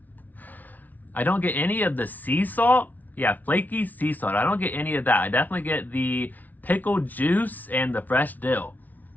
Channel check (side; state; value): right; late; 0.078 ms